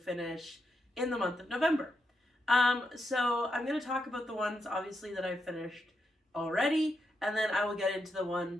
in the month of November. So I'm going to talk about the ones obviously that I've finished already, and then I will get into the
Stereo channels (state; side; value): normal; both; correlation 0.83